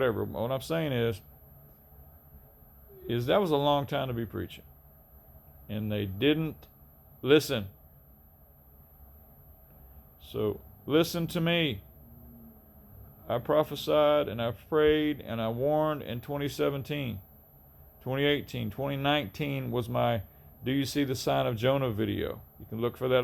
What I'm saying is that was a long time to be preaching. And they didn't listen. So listen to me. I prophesied and I prayed and I warned in 2017, 2018, 2019 was my "Do You See the Sign of Jonah" video. You can look for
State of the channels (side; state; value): both; identical; correlation 1.00